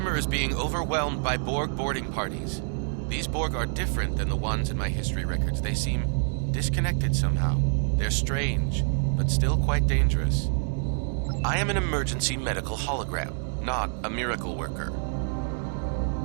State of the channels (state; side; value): silent; left; 60 dB below the other